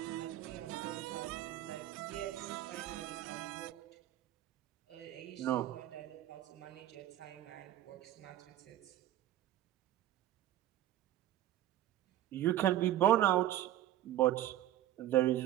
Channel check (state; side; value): quieter; left; 13.2 dB